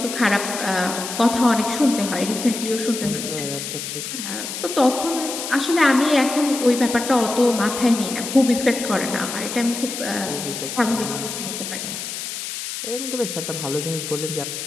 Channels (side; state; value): left; noise; hiss, 6 dB below the sound